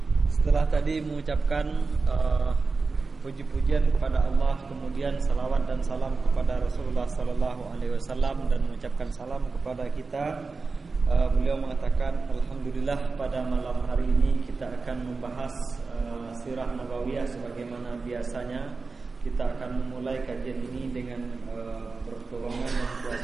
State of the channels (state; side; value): quieter; left; 4.2 dB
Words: Setelah tadi mengucapkan puji-pujian kepada Allah, kemudian salawat dan salam kepada Rasulullah sallallahu alaihi wasallam, dan mengucapkan salam kepada kita, beliau mengatakan, alhamdulillah pada malam hari ini kita akan membahas sirah nabawiyah sebagaimana biasanya. Kita akan memulai kajian ini dengan pertolongan dan